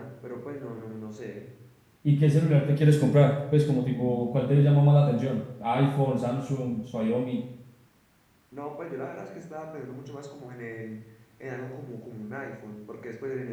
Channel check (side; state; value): both; identical; correlation 1.00